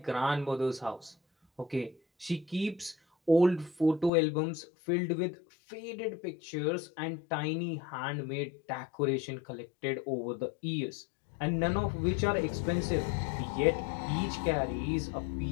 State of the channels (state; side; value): drops out; right; at 4.1 s